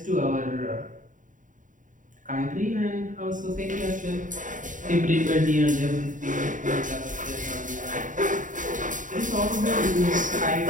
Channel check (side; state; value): left; late; 0.38 ms